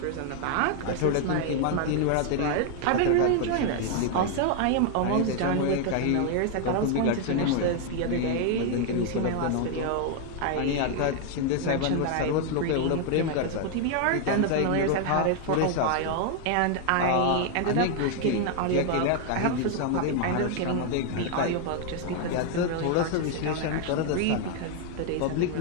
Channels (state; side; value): different; both; correlation 0.00